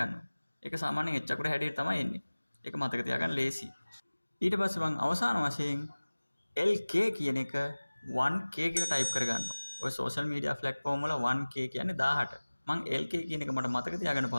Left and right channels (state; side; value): inverted; both; correlation -1.00